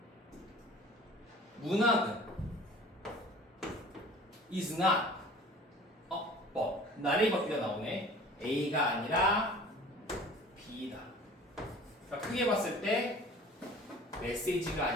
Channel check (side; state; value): both; normal; correlation 0.45